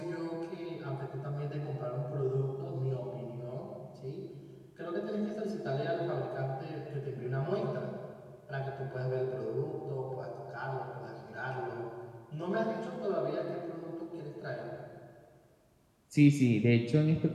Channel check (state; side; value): identical; both; correlation 1.00